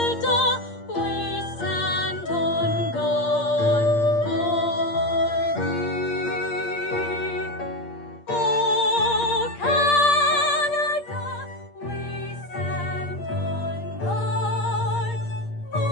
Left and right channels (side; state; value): right; late; 8.6 ms